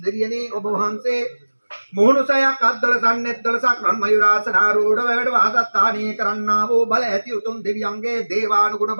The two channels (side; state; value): both; inverted; correlation -1.00